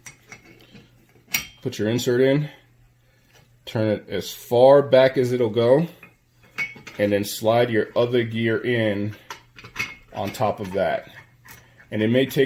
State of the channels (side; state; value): both; identical; correlation 1.00